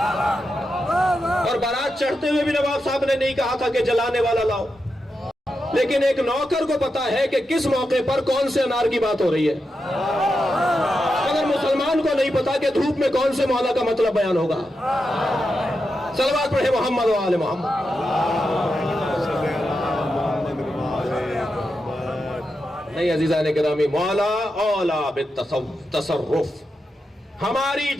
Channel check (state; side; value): normal; both; correlation 0.88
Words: اور بارات چڑھتے ہوئے بھی نواب صاحب نے نہیں کہا تھا کہ جلانے والا لاؤ، لیکن ایک نوکر کو پتا ہے کہ کس موقع پر کون سے انار کی بات ہو رہی ہے، مگر مسلمان کو نہیں پتا کہ دھوپ میں کون سے مولا کا مطلب بیان ہوگا۔ صلوات پڑھے محمد و آل محمد۔ نہیں عزیزان گرامی، مولا اولا بالتصرف، ہماری